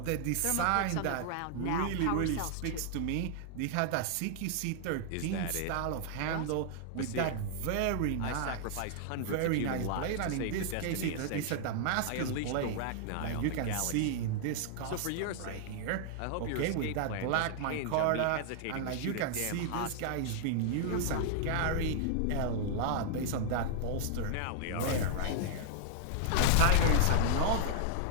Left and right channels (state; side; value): different; both; correlation -0.01